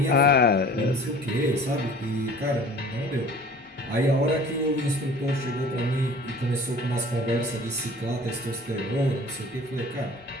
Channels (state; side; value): normal; both; correlation 0.47